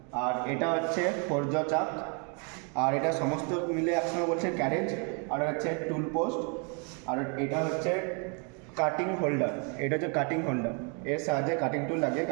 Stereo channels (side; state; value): left; quieter; 36.7 dB